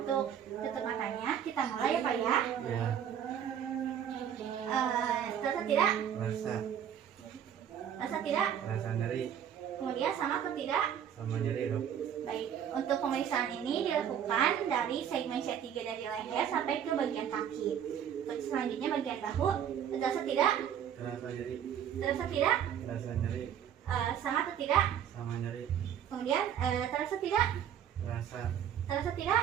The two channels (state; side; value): quieter; left; 9.2 dB